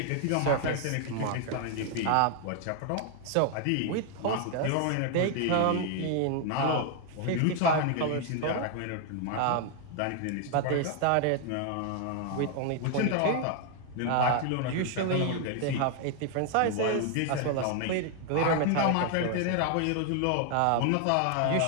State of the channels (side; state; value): both; different; correlation 0.00